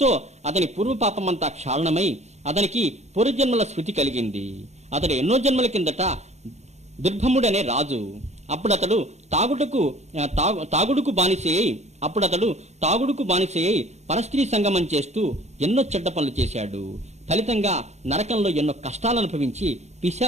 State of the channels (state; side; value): late; left; 0.32 ms